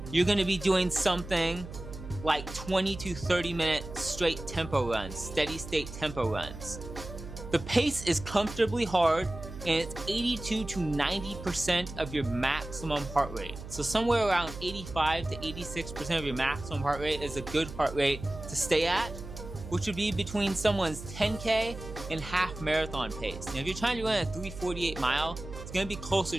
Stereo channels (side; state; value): right; noise; hum, 12 dB below the sound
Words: you're going to be doing something like 20 to 30 minute straight tempo runs, steady state tempo runs. The pace is comfortably hard, and it's 82 to 90% of your maximum heart rate. So somewhere around 85 to 86% of your maximum heart rate is a good heart rate to stay at, which would be between someone's 10K and half marathon pace. Now, if you're trying to run a 3:48 mile, it's going to be